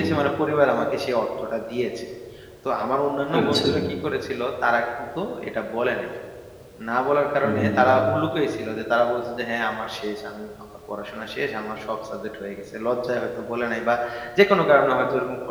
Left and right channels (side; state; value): both; identical; correlation 1.00